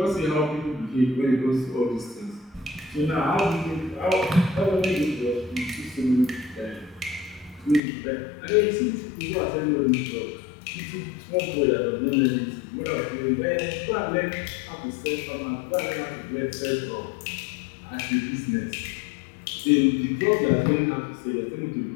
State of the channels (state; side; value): drops out; right; at 7.8 s